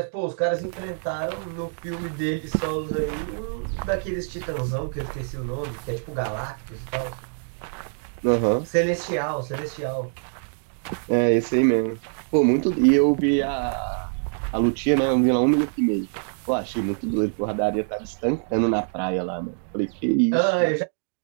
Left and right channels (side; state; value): left; silent; 62 dB below the other